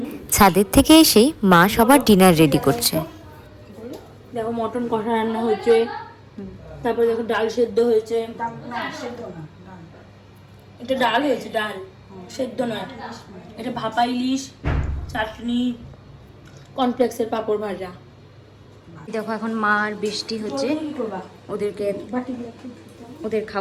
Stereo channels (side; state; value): both; identical; correlation 1.00